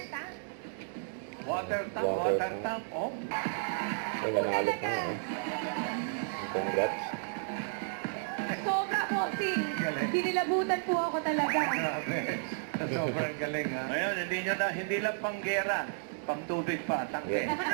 Water tap, oh. May nanalo pa nga. Congrats. Sobra, bossing. Hinilabutan po ako talaga. Grabe. Sobrang galing, ha? Ngayon, hindi lang panggera. Pang tubig pa, tangke. Yan.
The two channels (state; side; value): silent; left; 56 dB below the other